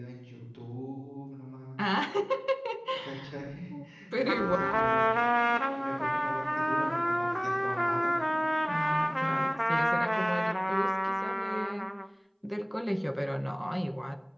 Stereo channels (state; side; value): identical; both; correlation 1.00